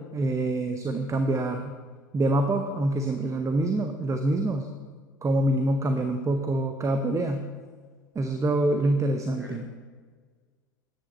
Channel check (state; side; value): normal; both; correlation 0.72